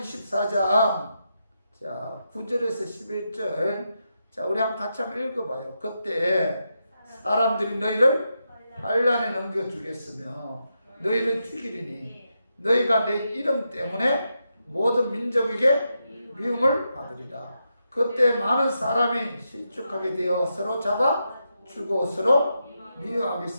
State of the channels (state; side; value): inverted; both; correlation -0.85